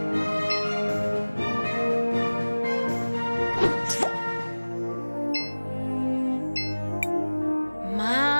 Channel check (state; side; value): inverted; both; correlation -1.00